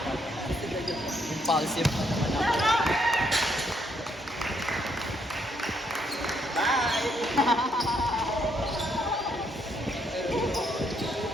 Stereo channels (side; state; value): both; normal; correlation 0.73